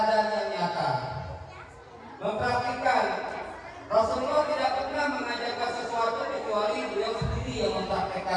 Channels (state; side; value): identical; both; correlation 1.00